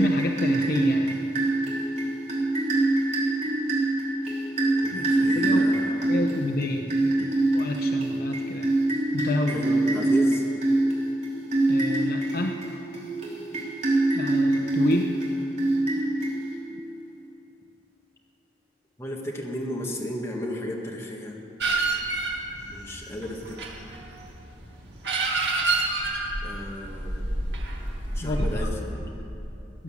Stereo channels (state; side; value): normal; both; correlation 0.78